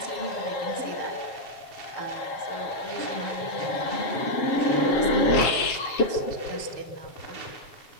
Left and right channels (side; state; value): right; late; 7.5 ms